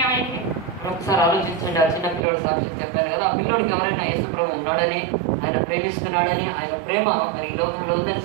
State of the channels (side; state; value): left; drops out; at 2.2 s